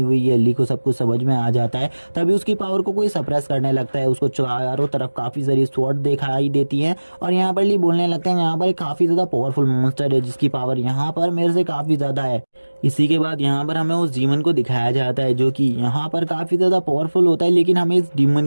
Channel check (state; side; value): inverted; both; correlation -1.00